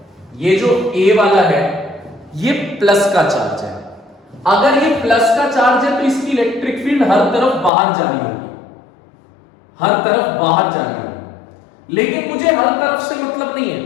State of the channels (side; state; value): right; drops out; at 7.7 s